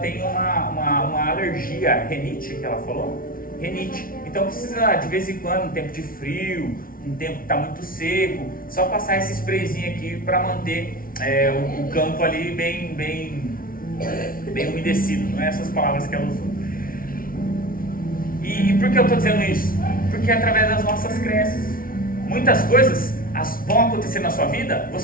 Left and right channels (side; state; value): right; late; 0.42 ms